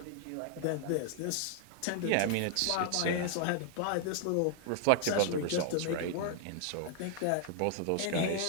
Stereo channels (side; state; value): both; different; correlation 0.00